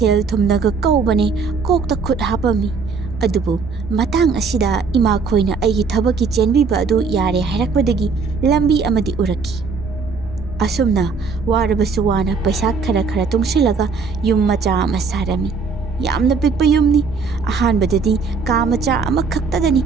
ꯊꯨꯝꯅꯒ ꯀꯧꯕꯅꯦ ꯀꯣꯛꯇ ꯈꯨꯠ ꯍꯥꯞꯄꯝꯃꯤ꯫ ꯑꯗꯨꯕꯨ ꯃꯇꯥꯡ ꯑꯁꯤꯗ ꯏꯃꯥꯈꯣꯏꯅ ꯑꯩꯒꯤ ꯊꯕꯛꯀꯤ ꯆꯦꯟꯕꯤꯕ ꯑꯗꯨ ꯌꯥꯔꯦ ꯍꯥꯏꯔꯛꯄꯗꯒꯤ ꯂꯝꯕꯤ ꯑꯃꯗꯤ ꯎꯔꯛꯈꯤ꯫ ꯑꯁꯨꯝꯅ ꯋꯥꯔꯕꯁꯨ ꯋꯥꯅ ꯄꯩꯁꯥ ꯈꯔ ꯈꯔ ꯇꯨꯡꯁꯤꯜꯂꯒ ꯌꯨꯝ ꯃꯆꯥ ꯑꯃ ꯁꯥꯔꯝꯃꯤ꯫ ꯌꯥꯝꯅ ꯄꯤꯛꯄ ꯌꯨꯝꯅꯤ꯫ ꯑꯍꯥꯟꯕꯗꯗꯤ ꯀꯥ ꯃꯆꯥ ꯑꯃꯈꯛꯇꯗꯅꯤ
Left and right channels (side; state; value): left; quieter; 4.9 dB